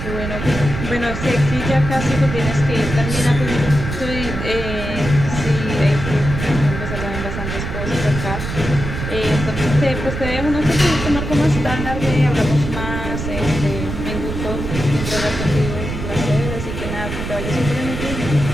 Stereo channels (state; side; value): noise; right; rumble, 5 dB below the sound